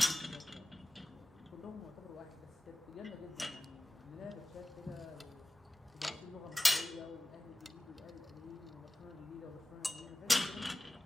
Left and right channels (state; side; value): normal; both; correlation 0.97